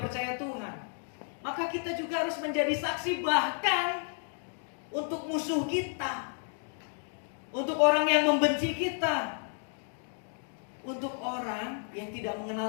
Tuhan. Maka kita juga harus menjadi saksi bahkan untuk musuh kita. Untuk orang yang membenci kita. Untuk orang yang tidak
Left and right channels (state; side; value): silent; right; 57 dB below the other